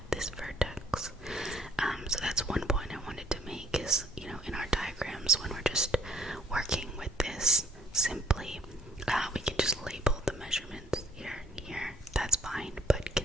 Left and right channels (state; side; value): normal; both; correlation 0.62